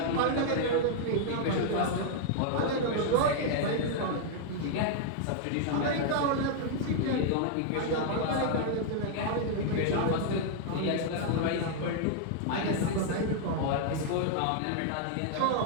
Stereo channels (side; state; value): both; different; correlation -0.01